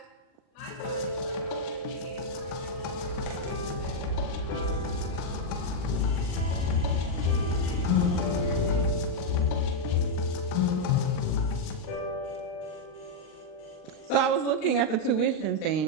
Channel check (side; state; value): right; late; 39 ms